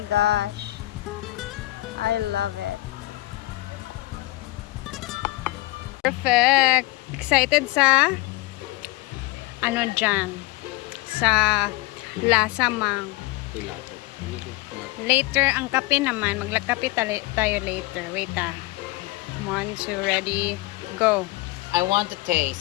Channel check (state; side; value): quieter; right; 20.4 dB